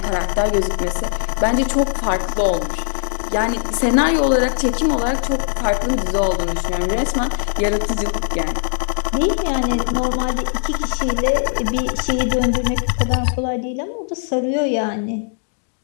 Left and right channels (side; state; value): right; silent; digital silence